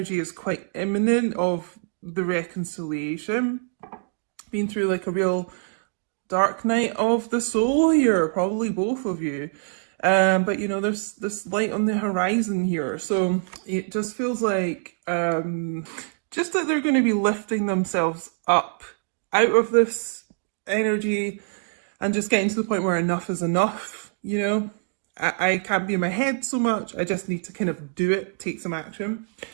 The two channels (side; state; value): left; silent; digital silence